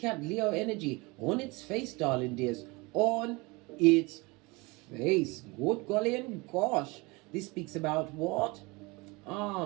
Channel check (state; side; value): quieter; left; 25.3 dB